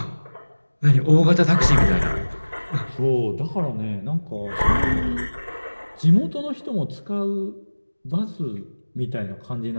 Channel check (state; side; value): inverted; both; correlation -1.00